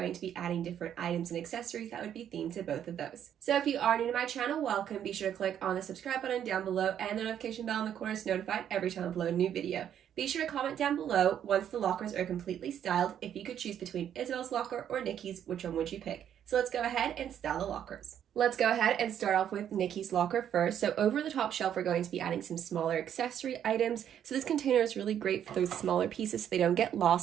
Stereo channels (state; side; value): quieter; left; 9.7 dB